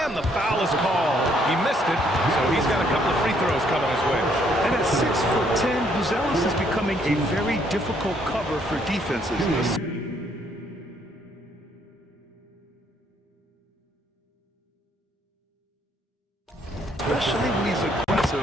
and the foul is called. He missed it, so he's got a couple of free throws coming his way. And at 6'10", Buzelis is becoming a very difficult cover for defenses. Especially when he's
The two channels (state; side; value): normal; both; correlation 0.68